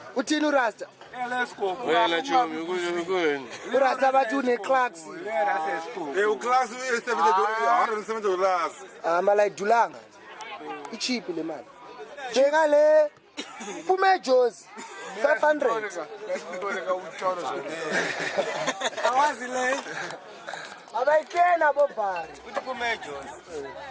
Uthini urasta? Urasta bathi une-Clarks. U-Clarks $170. Mala idulanga. I-cheap le mali. Bheka le phume eJozi 500. Awazi le. Abayikena abobhari. Uthi phume eJozi.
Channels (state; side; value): identical; both; correlation 1.00